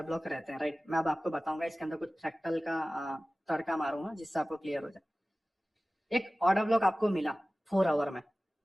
ब्लॉक रहते हैं, राइट? मैं अब आपको बताऊंगा, इसके अंदर कुछ फ्रैक्टल का तड़का मारूंगा जिससे आपको क्लियर हो जाए। एक ऑर्डर ब्लॉक आपको मिला 4 आवर में,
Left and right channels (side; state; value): both; normal; correlation 0.97